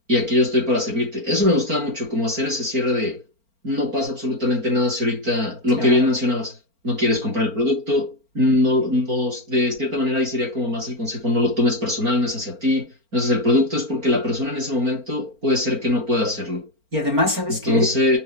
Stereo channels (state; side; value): late; left; 4.4 ms